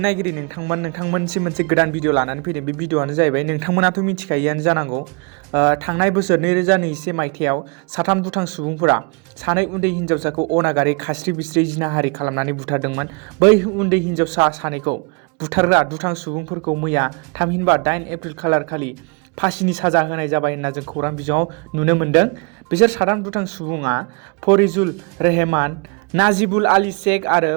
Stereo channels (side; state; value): left; quieter; 32.9 dB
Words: नायगिरि नोंथांमोनसिम मोनसे गोदान भिडिअ लानानै फैदों। बे भिडिअआनो जाहैबाय नोंथांमोनाथ' मिथिखायोआनो जानांगौ थांनाय बोसोर 2021 मायथाइयाव साथाम दुथां सुबुंफोरा सानै उन्दै हिन्जावसाखौ अनागारि खास्रि बिस्रि जिनाहारि खालामनानै बुथारदोंमोन। बै उन्दै हिन्जावसा सानैखौ बुथारग्रा दुथां सुबुंफोरखौ मैया थामहिनबा 8 एप्रिल खालारखालि फासिनि साजा होनाय जाबाय होनना जों खौरां बिजोङाव नुनो मोन्दों। बिसोर साथाम दुथां सुबुङा फरिजुल रेहमान, नाजिबुल आली शेख आरो